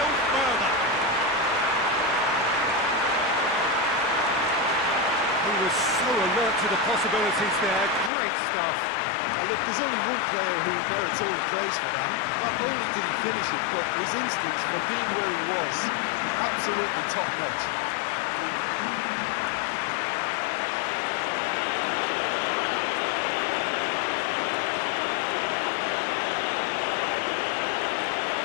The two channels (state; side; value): drops out; right; at 8.1 s